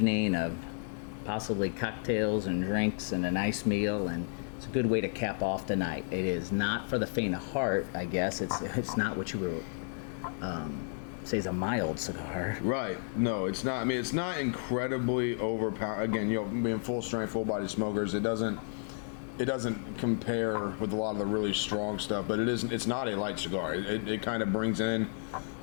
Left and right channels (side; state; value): right; silent; 56 dB below the other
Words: of possibly cocktails and drinks and a nice meal, and it's a good way to cap off the night. It is not for the faint of heart, I guess. It's not what you would say is a mild cigar. Right. No, it's not. I mean, it's not incredibly overpowering. Again, being full strength, full body smokers, it doesn't compare with a lot of the really strong stuff, but it's not a light cigar. It kind of brings in